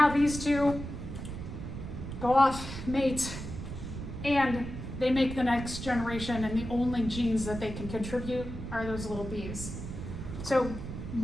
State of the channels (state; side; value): noise; right; rumble, 8 dB below the sound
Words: these two go off, mate, and they make the next generation, and the only genes that they can contribute are those little b's. So